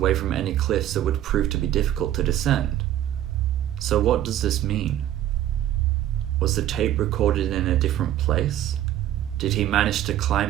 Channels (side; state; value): left; quieter; 12.3 dB